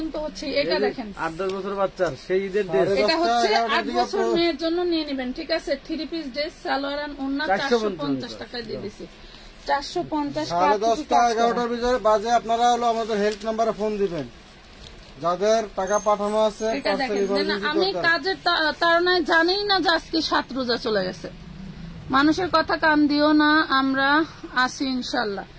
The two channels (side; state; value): both; identical; correlation 1.00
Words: হচ্ছে। এটা দেখেন 8-10 বছর বাচ্চার সেই ঈদের ড্রেস, এটা হচ্ছে 8 বছর মেয়ের জন্য নিয়ে নেবেন, ঠিক আছে? 3 পিস ড্রেস সালোয়ার আর ওন্না 450 টাকায় দিয়ে দিছি। 450 10:30 11টার ভিতরে বাজে আপনারা হলো আমাদের হেল্প নাম্বারে ফোন দিবেন যাদের টাকা পাঠানো আছে। এটা দেখেন আমি কাজের তাড়নায় জানি না যে আজকে 7 রোজা চলে গেছে। মানুষের কথা কান দিও না, আমরা আসি ইনশাল্লাহ।